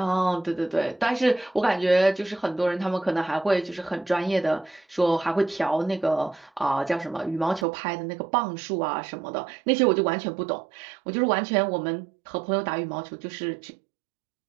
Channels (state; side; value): drops out; left; at 7.7 s